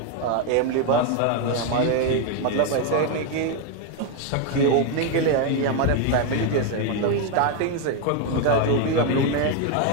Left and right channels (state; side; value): different; both; correlation 0.01